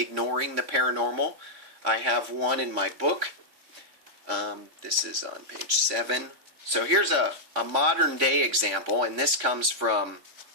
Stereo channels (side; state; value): left; late; 3.6 ms